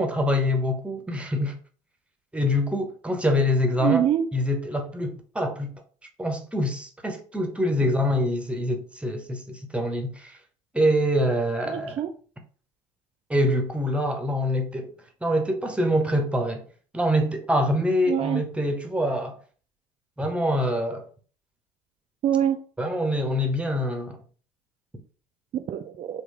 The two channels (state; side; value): normal; both; correlation 0.61